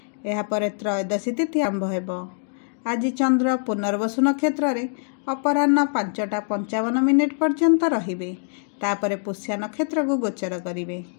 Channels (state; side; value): silent; right; digital silence